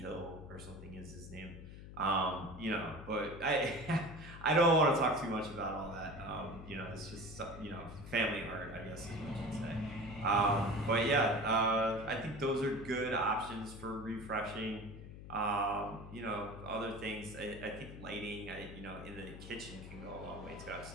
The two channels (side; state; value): left; noise; hum, 13 dB below the sound